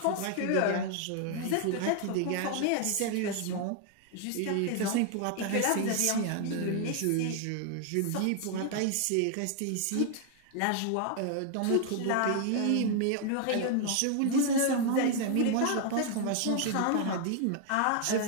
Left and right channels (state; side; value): different; both; correlation 0.00